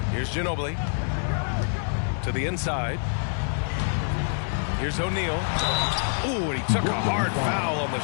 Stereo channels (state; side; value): silent; right; digital silence